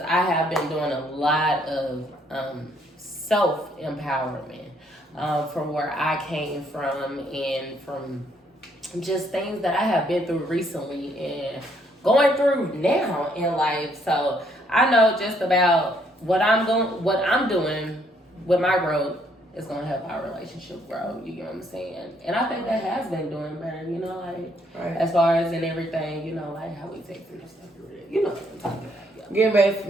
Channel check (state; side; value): normal; both; correlation 0.69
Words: I have been doing a lot of self-empowerment from where I came from and from just things that I have been through recently and going through now in life. So I know just about what I'm doing with my growth is gonna help our relationship grow. You know what I'm saying? And I think that has been doing better. You know, like as far as in everything. You know, like how we take through stuff. You know what I'm talking about. Yeah. Get back to